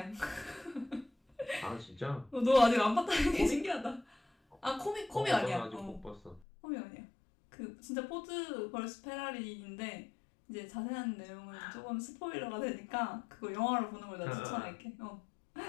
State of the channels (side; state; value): right; drops out; at 6.5 s